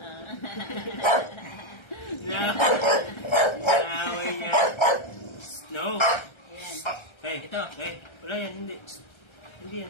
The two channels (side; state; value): right; late; 1.3 ms